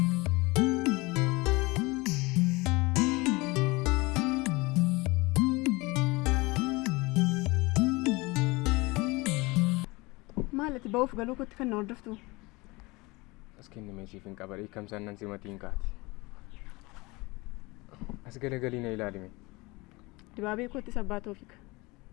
Maalati ba'uuf galuu kootti kan na hordoftu? As kenni meeshiif hin qabarii kamsaan nan simatiin kaati. As galagalii na ilaalime. Dibaabee koottis abbaa Toofiq.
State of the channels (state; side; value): quieter; right; 23.9 dB